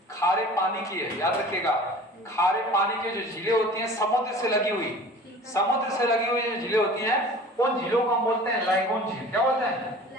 खारे पानी की है, याद रखिएगा। खारे पानी की जो झीलें होती हैं समुद्र से लगी हुई, समुद्र से लगी हुई जो झीलें होती हैं उन झीलों को हम बोलते हैं लैगून झील। क्या बोलते हैं?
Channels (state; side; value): normal; both; correlation 0.43